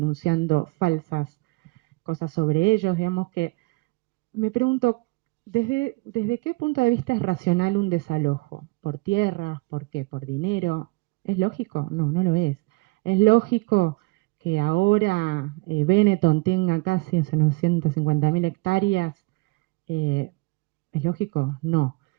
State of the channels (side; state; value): left; quieter; 25.9 dB